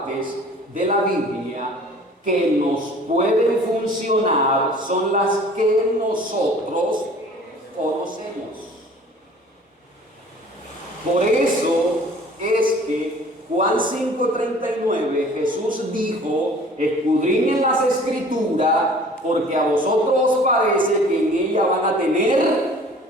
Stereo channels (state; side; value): normal; both; correlation 0.49